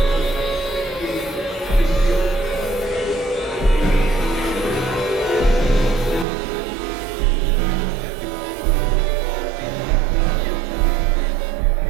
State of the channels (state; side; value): drops out; left; at 6.2 s